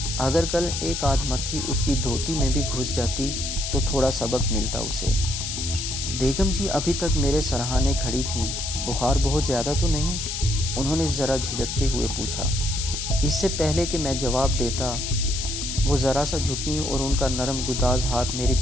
اگر کل ایک آدھ مکھی اس کی دھوتی میں بھی گھس جاتی تو تھوڑا سبق ملتا اسے۔ بیگم جی ابھی تک میرے سرہانے کھڑی تھیں۔ بخار بہت زیادہ تو نہیں؟ انہوں نے ذرا جھجکتے ہوئے پوچھا۔ اس سے پہلے کہ میں جواب دیتا، وہ ذرا سا جھکیں اور ان کا نرم گداز ہاتھ میری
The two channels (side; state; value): left; noise; hiss, 4 dB below the sound